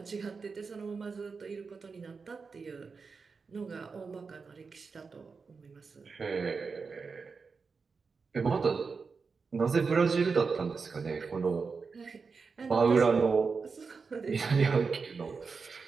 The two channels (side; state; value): left; quieter; 4.9 dB